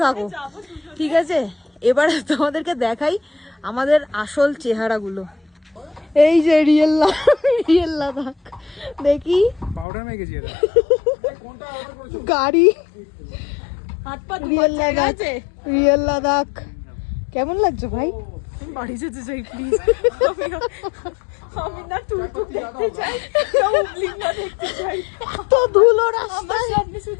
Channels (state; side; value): drops out; right; at 9.9 s